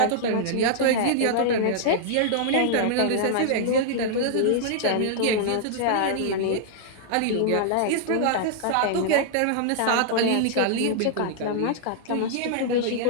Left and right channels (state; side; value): different; both; correlation -0.01